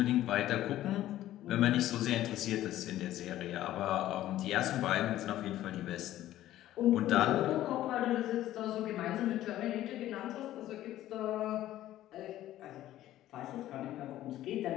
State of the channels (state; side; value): quieter; right; 13.8 dB